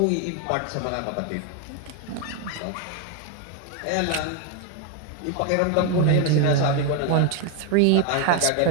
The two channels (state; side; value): different; both; correlation 0.01